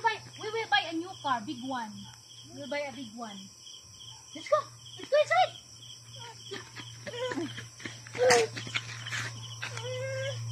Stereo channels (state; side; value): identical; both; correlation 1.00